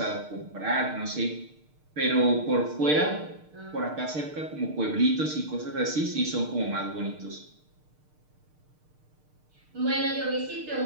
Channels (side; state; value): left; late; 6.6 ms